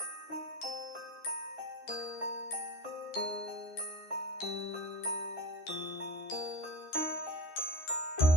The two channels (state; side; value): late; right; 13 ms